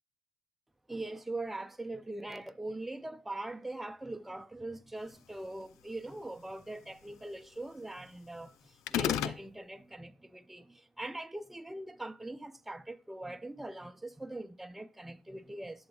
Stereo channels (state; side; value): normal; both; correlation 0.76